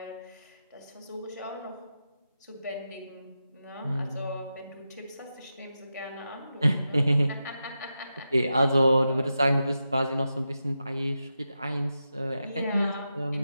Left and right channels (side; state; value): both; inverted; correlation -0.89